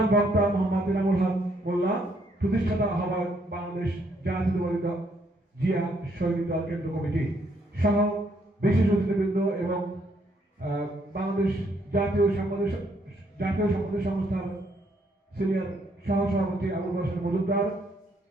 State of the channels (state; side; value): normal; both; correlation 0.71